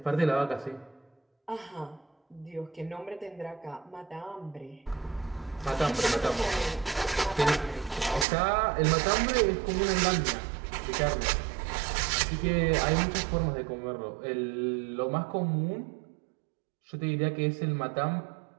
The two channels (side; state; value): left; drops out; at 8.2 s